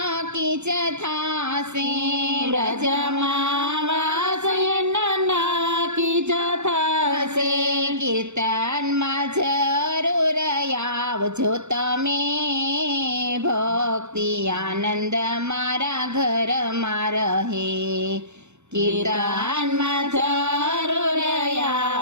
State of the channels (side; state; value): left; late; 0.82 ms